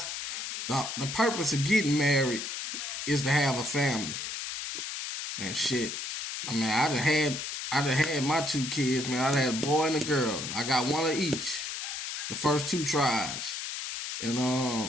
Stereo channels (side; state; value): left; noise; hiss, 5 dB below the sound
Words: the purpose of getting married is to have a family and shit. I mean, I done had my 2 kids, man. I done had a boy and a girl. I got one of each. The first 2 tries. And